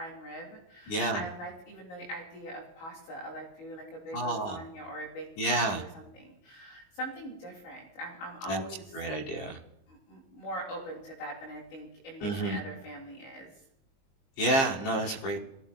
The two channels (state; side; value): late; right; 22 ms